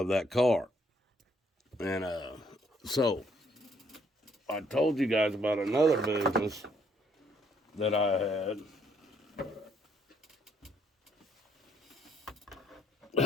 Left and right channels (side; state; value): both; normal; correlation 0.68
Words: that car. And so I told you guys about another business that I had.